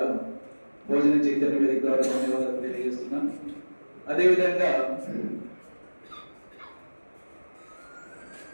భోజన చైతన్య వేదిక ద్వారా ధన్యవాదాలు తెలియజేస్తున్నాను. అదేవిధంగా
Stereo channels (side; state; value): both; inverted; correlation -1.00